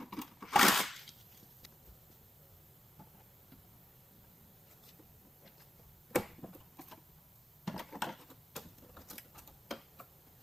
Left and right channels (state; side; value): normal; both; correlation 0.89